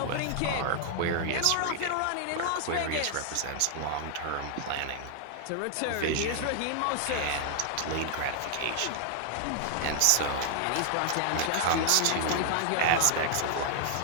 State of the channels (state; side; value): different; both; correlation 0.00